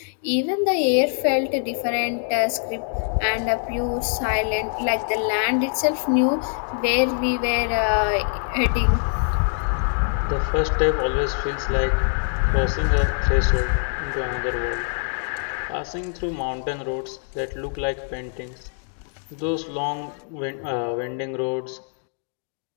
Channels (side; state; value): right; silent; 57 dB below the other